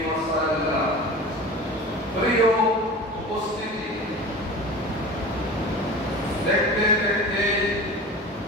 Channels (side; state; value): both; normal; correlation 0.35